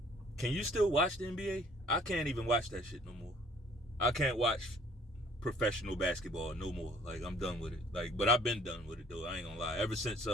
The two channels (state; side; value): normal; both; correlation 0.57